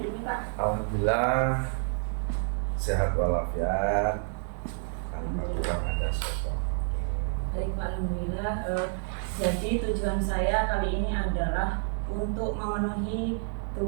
ini Pak? Alhamdulillah sehat walafiat. Alhamdulillah ada sesuatu. Baik Pak, Alhamdulillah. Jadi tujuan saya kali ini adalah untuk memenuhi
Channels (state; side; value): silent; left; digital silence